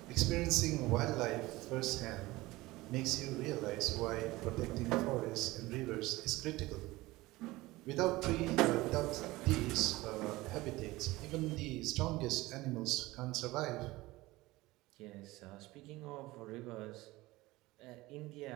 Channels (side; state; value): left; quieter; 19.6 dB